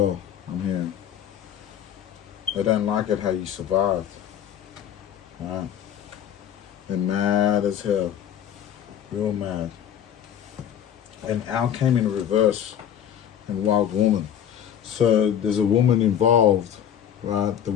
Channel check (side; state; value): right; quieter; 9.5 dB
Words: I'm hearing. They don't like it how you survived, right? They're mad as hell, real mad. And Al came in reverse in Wild Woman. So there's a woman involved, right, that